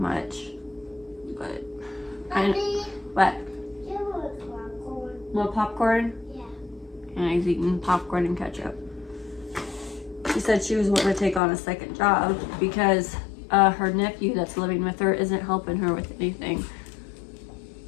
but what? More popcorn? Yeah. And he's eating popcorn and ketchup. She said she was wanting to take on a second job because her nephew that's living with her isn't helping her with anything.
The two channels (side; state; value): right; drops out; at 11.4 s